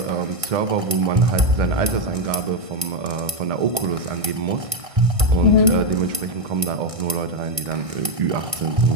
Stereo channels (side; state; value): left; late; 1.6 ms